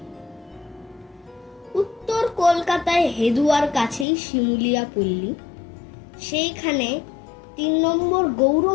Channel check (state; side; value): drops out; right; at 4.0 s